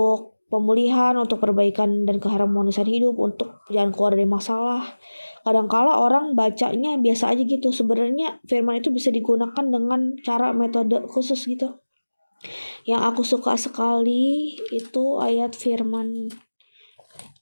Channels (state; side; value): inverted; both; correlation -1.00